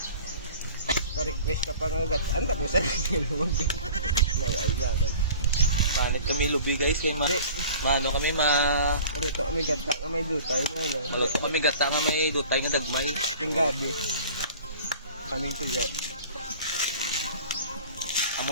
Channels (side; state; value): both; inverted; correlation -0.44